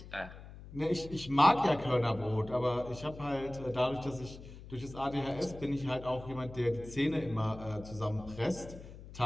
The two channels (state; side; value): noise; left; hum, 15 dB below the sound